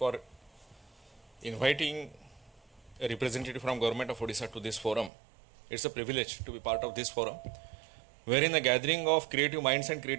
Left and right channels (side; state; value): left; drops out; at 5.1 s